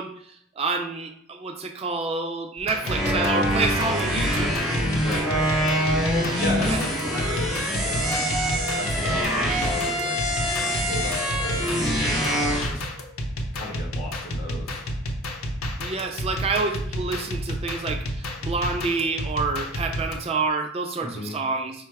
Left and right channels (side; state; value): both; normal; correlation 0.41